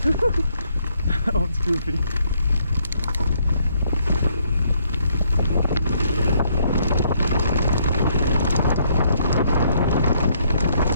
That one's goofy.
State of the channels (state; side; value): inverted; both; correlation -0.70